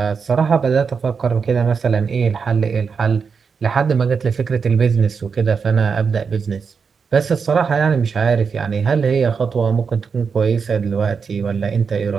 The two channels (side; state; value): left; quieter; 5.7 dB